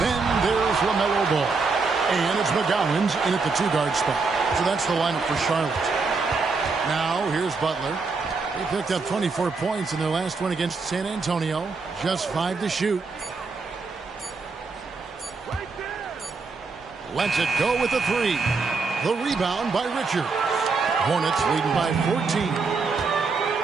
there's LaMelo Ball. And it's McGowan's in at the 2-guard spot. So that's the lineup for Charlotte. Now here's Butler. They picked up 24 points in their last one against San Antonio. Just 5 to shoot. Lets it go with the 3. The rebound by Richards. Hornets leading by 14.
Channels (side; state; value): left; quieter; 4.4 dB